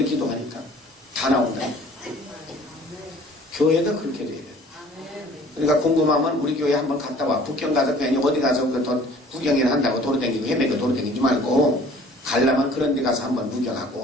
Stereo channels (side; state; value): both; normal; correlation 0.51